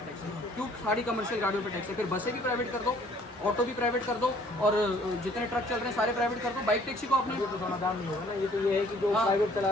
है? क्यों सारी कमर्शियल गाड़ियों पे टैक्स है? फिर बसें भी प्राइवेट कर दो, ऑटो भी प्राइवेट कर दो और जितने ट्रक चल रहे हैं सारे प्राइवेट कर दो। बाइक टैक्सी को आपने तो समाधान नहीं होगा ना, ये तो ये है कि जो प्राइवेट चला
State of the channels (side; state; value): both; normal; correlation 0.58